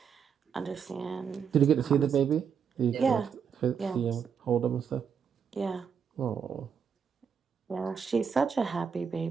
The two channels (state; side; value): quieter; left; 6.9 dB